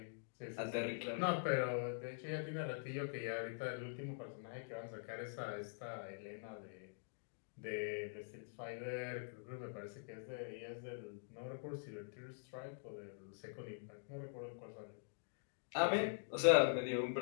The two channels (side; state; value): right; silent; digital silence